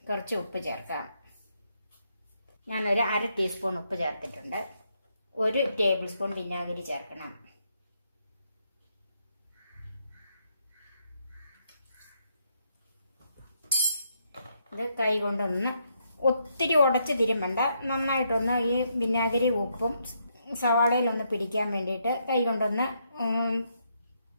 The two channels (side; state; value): both; inverted; correlation -0.77